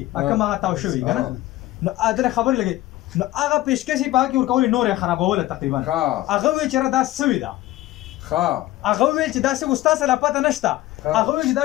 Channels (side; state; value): right; quieter; 16.3 dB